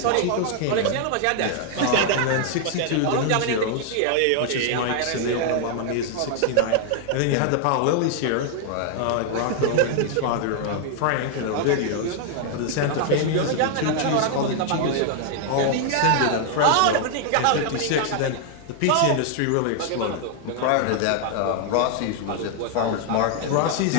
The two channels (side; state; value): both; different; correlation 0.00